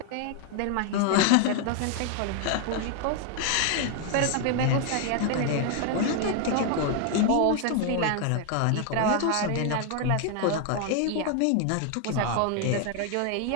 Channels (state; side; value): different; both; correlation 0.00